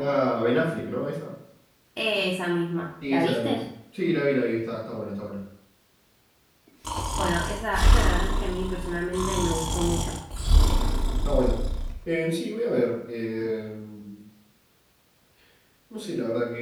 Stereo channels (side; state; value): both; identical; correlation 1.00